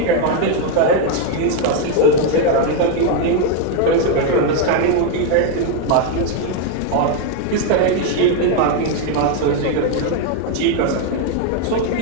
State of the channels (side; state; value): both; different; correlation 0.01